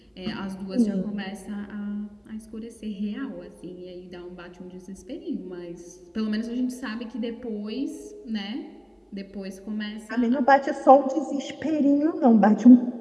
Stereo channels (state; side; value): identical; both; correlation 1.00